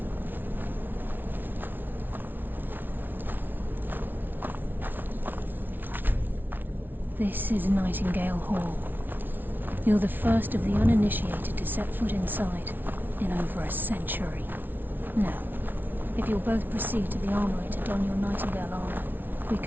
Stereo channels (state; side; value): late; left; 0.092 ms